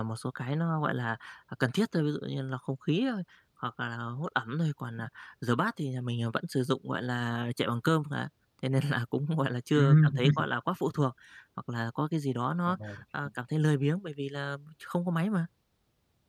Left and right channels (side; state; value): both; identical; correlation 1.00